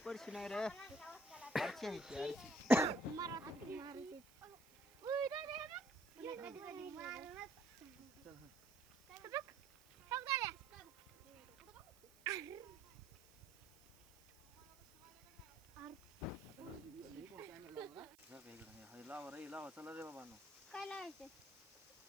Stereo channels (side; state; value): right; noise; hiss, 25 dB below the sound